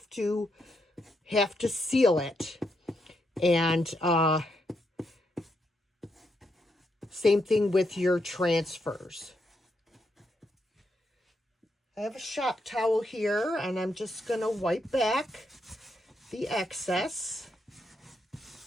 to seal it. And same thing with your transfers. I have a shop towel here, and I'm just going to wipe back the excess.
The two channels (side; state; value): both; normal; correlation 0.80